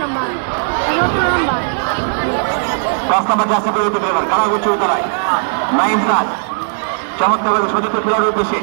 নাইম স্যার চমৎকার সতীর্থ খেলার উদ্দেশ্যে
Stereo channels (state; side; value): silent; left; 61 dB below the other